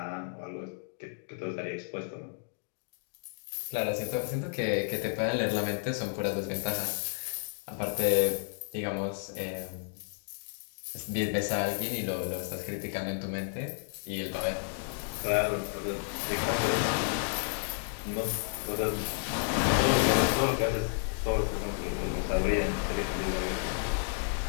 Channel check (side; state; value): right; silent; digital silence